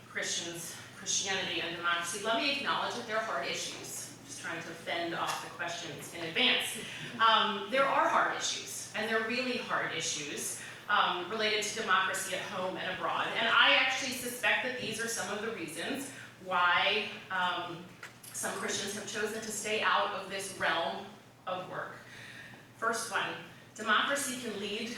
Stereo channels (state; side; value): identical; both; correlation 1.00